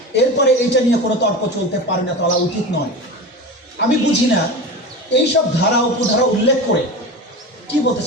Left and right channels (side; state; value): both; normal; correlation 0.28